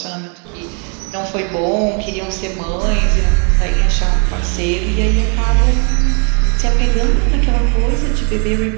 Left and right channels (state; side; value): quieter; left; 37.7 dB